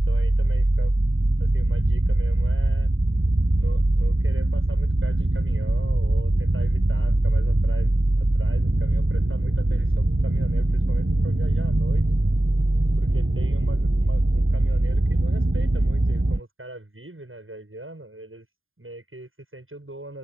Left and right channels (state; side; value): late; left; 0.59 ms